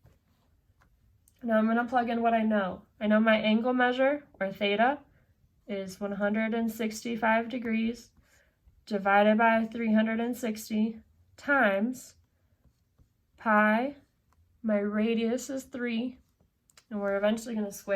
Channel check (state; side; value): identical; both; correlation 1.00